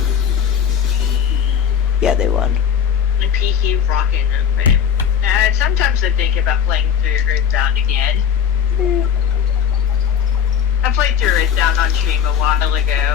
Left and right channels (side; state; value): right; quieter; 8.1 dB